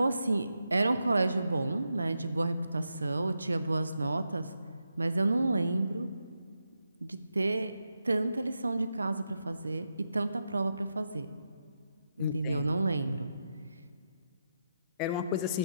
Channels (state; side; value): inverted; both; correlation -0.86